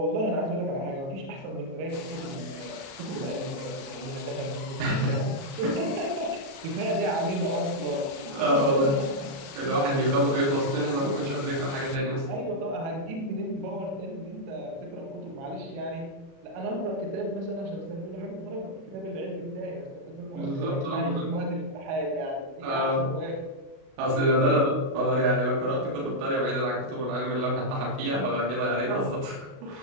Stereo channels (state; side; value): late; left; 36 ms